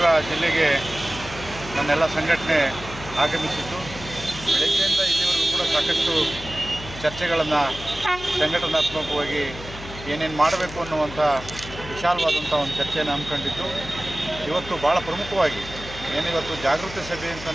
ಜಿಲ್ಲೆಗೆ ನನ್ನೆಲ್ಲ ಸಂಘಟನೆ ಆಗಮಿಸಿದ್ದು, ಬೆಳಗ್ಗೆಯಿಂದ ಇಲ್ಲಿವರೆಗೂ ಕೂಡ ಸಾಕಷ್ಟು ಚರ್ಚೆಗಳನ್ನು ಸಂಘಟನಾತ್ಮಕವಾಗಿ ಏನೇನು ಮಾಡಬೇಕು ಅನ್ನುವಂಥ ವಿಶಾಲವಾದಂಥ ಒಂದು ಚರ್ಚೆಯನ್ನು ಹಮ್ಮಿಕೊಂಡಿದ್ದು, ಇವತ್ತು ಭಾಳ ಪ್ರಮುಖವಾಗಿ ಏನಿವತ್ತು ಜಾಗೃತಿ ಸಭೆ ಅಂತ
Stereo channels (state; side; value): noise; left; hum, 13 dB below the sound